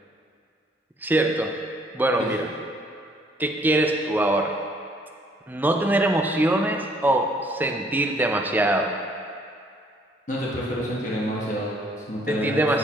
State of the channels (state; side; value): normal; both; correlation 0.63